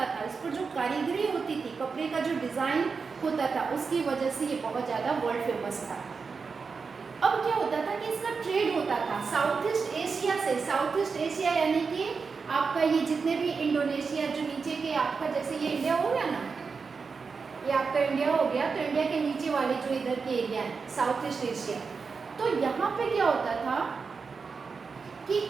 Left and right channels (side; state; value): left; quieter; 5.1 dB